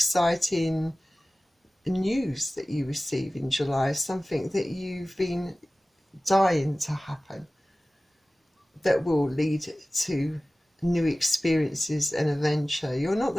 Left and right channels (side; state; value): both; normal; correlation 0.97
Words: news that you receive in July, something that you've been dying to happen, that will lead to new experiences and adventure. You're not